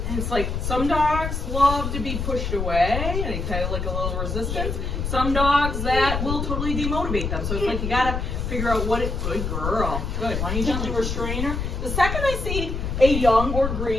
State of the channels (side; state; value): left; noise; rumble, 3 dB below the sound